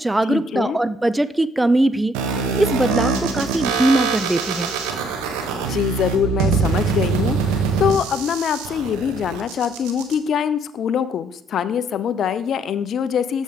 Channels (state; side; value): normal; both; correlation 0.65